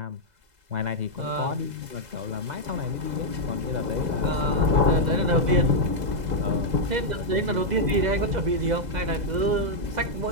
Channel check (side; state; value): left; late; 2.0 ms